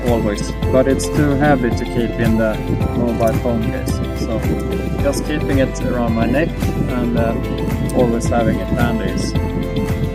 always, but it's too heavy to keep in the mobile phone case, so just keeping it around my neck and always having it handy is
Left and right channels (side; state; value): both; identical; correlation 1.00